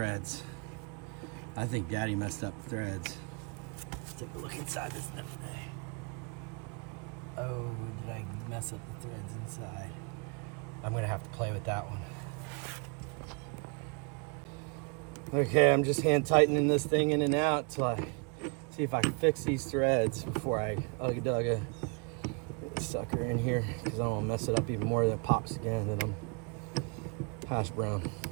I think Daddy messed up the threads. Let's take a look inside this thing. Oh, did I mess up the threads inside? I'm gonna have to play with that one. Okay, I'm just hand tightening this thing in and out till I see if I can fix these threads before I ugga-dugga this sucker in here, because I don't want to mess it up even more. That pops again, then I'm hash brown.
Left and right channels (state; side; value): quieter; left; 35.7 dB